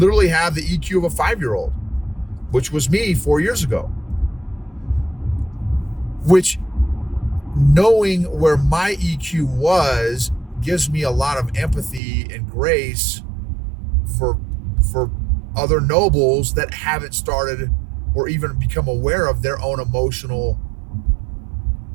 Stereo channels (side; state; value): left; drops out; at 12.0 s